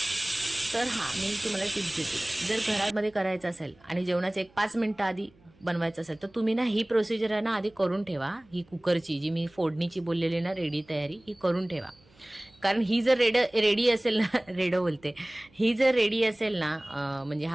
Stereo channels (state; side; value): noise; right; hum, 30 dB below the sound